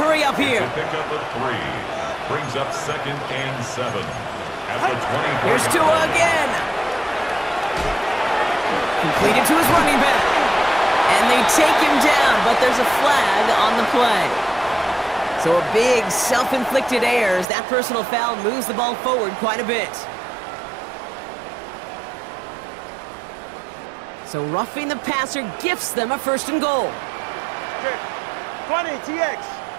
up here. Pick up a 3. Brings up 2nd and 7. At the 24. Here's Tua again. Completed to his running back. And they take him down, but there's a flag on the play. So a big self-inflicted error as that personal foul moves the ball forward quite a bit. So roughing the passer gifts them a 1st and goal. 20 TX.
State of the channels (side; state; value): left; drops out; at 17.4 s